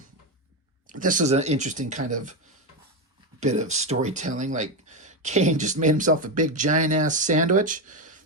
This is an interesting kind of bit of storytelling. Like, Kane just made himself a big giant-ass sandwich,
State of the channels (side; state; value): both; normal; correlation 0.11